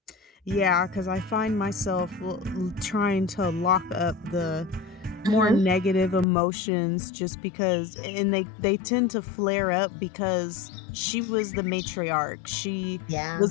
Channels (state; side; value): drops out; right; at 6.2 s